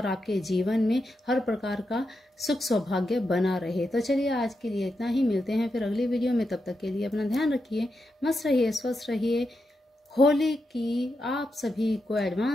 आपके जीवन में हर प्रकार का सुख सौभाग्य बना रहे। तो चलिए आज के लिए इतना ही, मिलते हैं फिर अगली वीडियो में। तब तक के लिए अपना ध्यान रखिए, मस्त रहिए, स्वस्थ रहिए। होली की आप सभी को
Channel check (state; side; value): normal; both; correlation 0.86